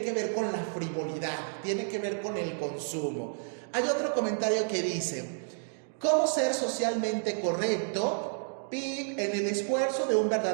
que ver con la frivolidad, tiene que ver con el consumo. Hay otro comentario que dice: ¿cómo ser socialmente correcto en el esfuerzo de un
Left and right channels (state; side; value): silent; left; digital silence